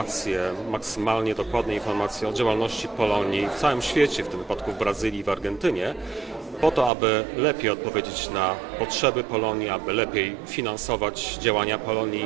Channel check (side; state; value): left; drops out; at 6.9 s